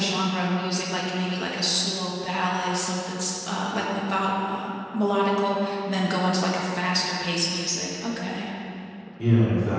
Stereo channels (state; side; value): identical; both; correlation 1.00